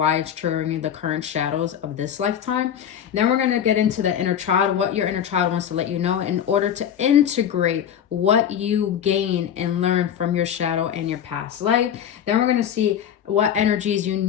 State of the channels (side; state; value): right; quieter; 9.2 dB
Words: it's triggering the current shadows of this lifetime. And then we're going to get into the inner child, what your inner child wants to let you know in order to integrate what you gain and learn from your shadow and your past life. Then we're going to see what energies you